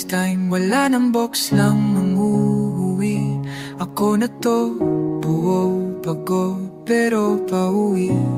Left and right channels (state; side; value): identical; both; correlation 1.00